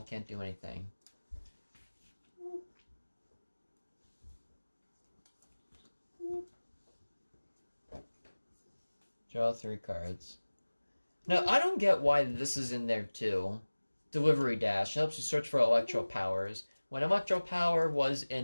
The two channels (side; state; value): both; inverted; correlation -1.00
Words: can't do anything. Draw 3 cards. Now, I don't get why this is in there too. Delivery Dash helps you search for Electro Powers when Electro Power was